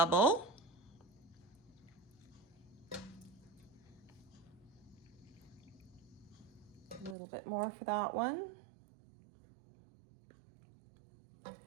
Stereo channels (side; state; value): left; drops out; at 7.2 s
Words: A little bit more for that one.